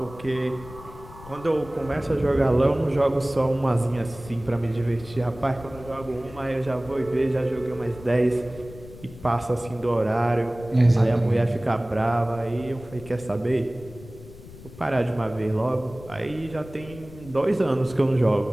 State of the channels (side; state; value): left; noise; rumble, 17 dB below the sound